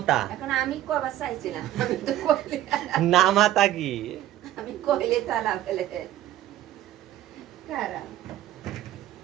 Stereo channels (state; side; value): quieter; left; 13.2 dB